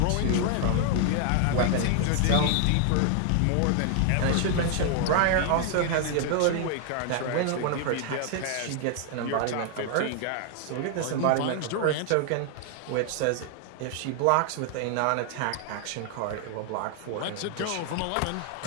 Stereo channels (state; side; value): different; both; correlation 0.00